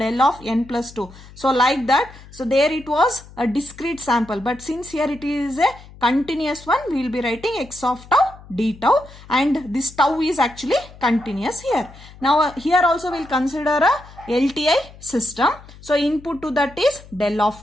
of n plus 2. So like that. So there it was a discrete sample, but since here it is a continuous one, we will be writing x of tau d tau, and this tau is actually continuous here. Now here also we'll consider a LTI system. So input to that is del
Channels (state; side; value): noise; left; hum, 20 dB below the sound